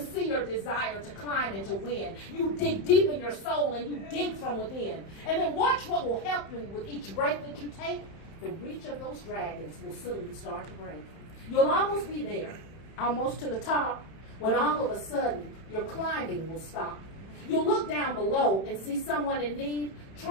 your desire to climb and to win. You dig deep in your soul and you dig from within. And then watch what will happen with each breath that you take. The reach of those dragons will soon start to break. You'll almost be there, almost to the top, when all of a sudden your climbing will stop. You'll look down below and see someone in need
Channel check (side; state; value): right; late; 31 ms